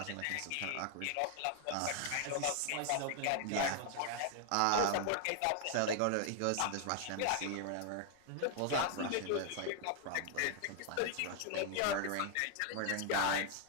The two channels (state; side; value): different; both; correlation 0.00